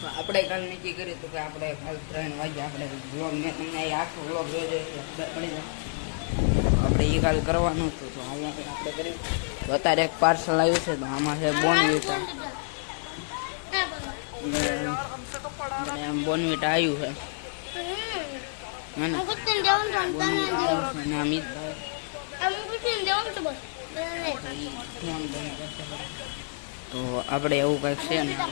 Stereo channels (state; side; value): silent; right; digital silence